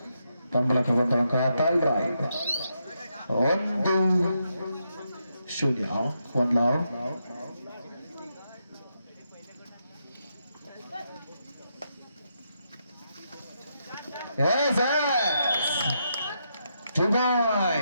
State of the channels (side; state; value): both; inverted; correlation -0.81